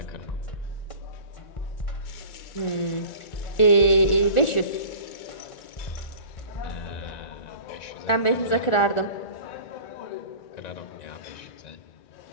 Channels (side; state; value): right; late; 1.4 ms